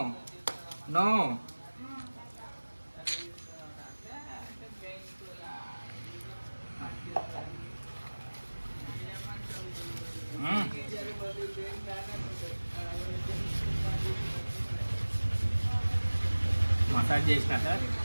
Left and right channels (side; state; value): both; inverted; correlation -1.00